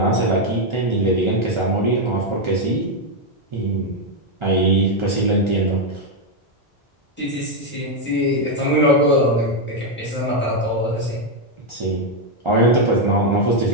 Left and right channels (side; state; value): both; normal; correlation 0.03